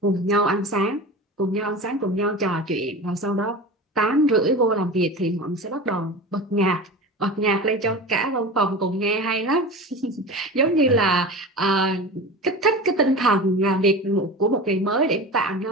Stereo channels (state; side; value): normal; both; correlation 0.30